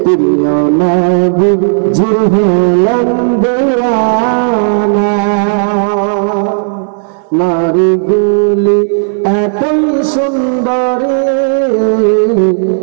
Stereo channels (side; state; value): left; silent; digital silence